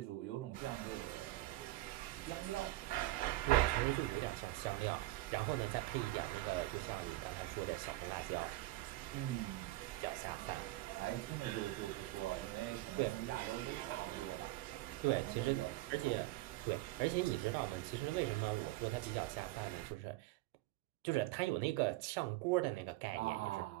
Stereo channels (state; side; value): quieter; left; 18.1 dB